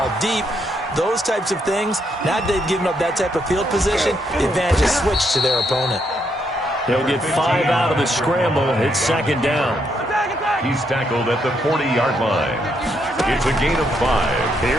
deep, those types of things. Now that they've given up that type of field position, the advantage is switched to their opponent. They'll get 5 out of the scramble. It's second down. He's tackled at the 40-yard line. It's a gain of 5.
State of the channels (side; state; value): both; normal; correlation 0.76